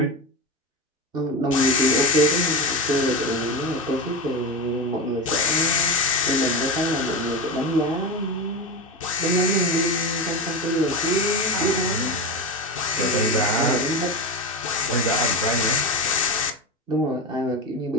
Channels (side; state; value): both; normal; correlation 0.20